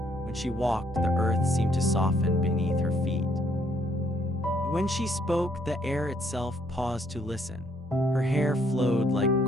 When she walked, the earth seemed to soften beneath her feet. When she spoke, the air itself paused to listen. Her hair flowed like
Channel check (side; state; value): both; normal; correlation 0.68